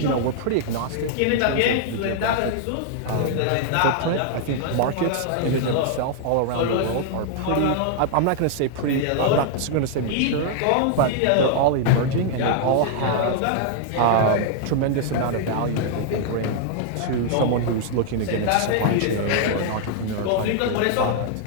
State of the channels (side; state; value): both; different; correlation -0.01